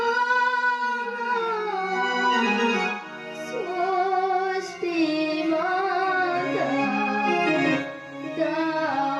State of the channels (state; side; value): identical; both; correlation 1.00